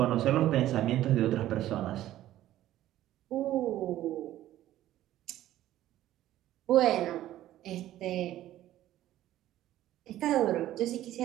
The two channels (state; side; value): quieter; left; 13.7 dB